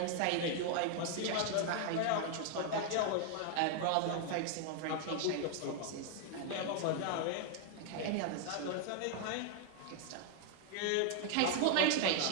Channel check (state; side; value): different; both; correlation 0.00